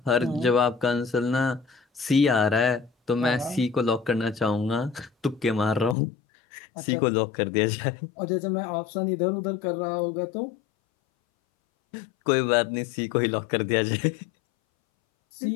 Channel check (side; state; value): right; drops out; at 6.0 s